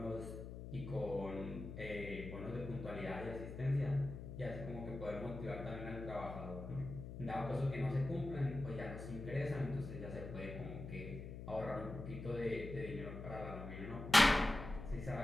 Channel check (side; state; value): left; noise; hum, 9 dB below the sound